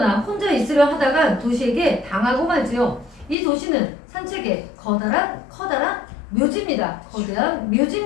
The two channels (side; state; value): right; drops out; at 3.4 s